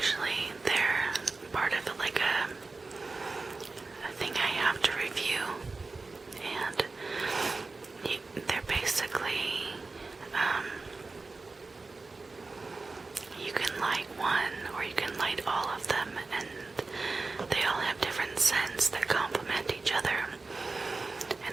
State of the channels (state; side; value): quieter; left; 3.7 dB